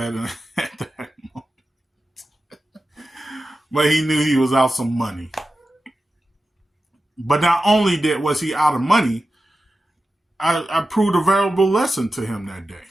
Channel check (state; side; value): normal; both; correlation 0.93